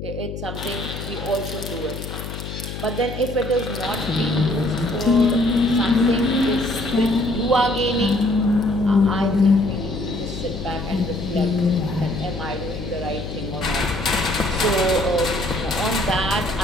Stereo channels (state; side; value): noise; left; hum, 8 dB below the sound